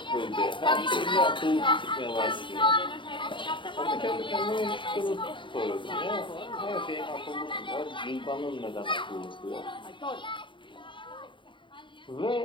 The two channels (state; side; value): late; right; 0.24 ms